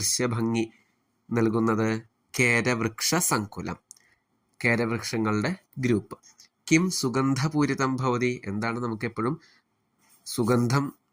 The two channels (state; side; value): identical; both; correlation 1.00